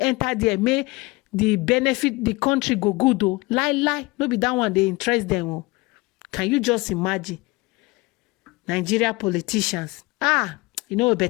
there, may the benefit the country go good though. Lie. No be that one they interest them. Oh. Can you just imagine? Nigeria politicians.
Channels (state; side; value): quieter; right; 23.2 dB